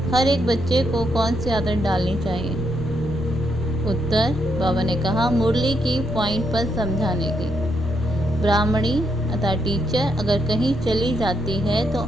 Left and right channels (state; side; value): normal; both; correlation 0.78